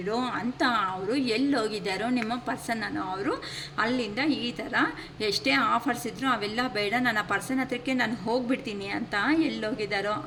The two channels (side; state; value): both; identical; correlation 1.00